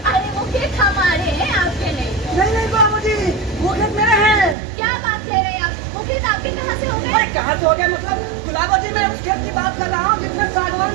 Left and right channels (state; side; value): drops out; left; at 4.5 s